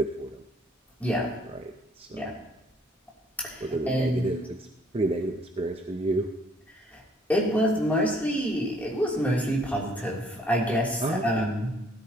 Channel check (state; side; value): normal; both; correlation 0.62